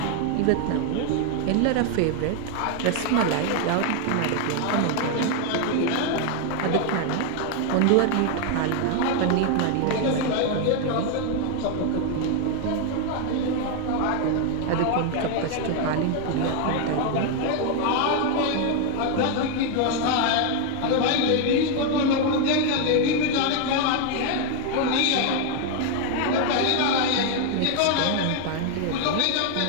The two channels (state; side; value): different; both; correlation 0.01